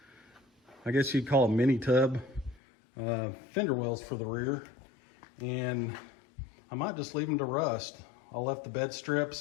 I guess you'd call them mini tub fender wells for the rear. And I might just leave them to rust. I left the bed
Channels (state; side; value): drops out; right; at 2.6 s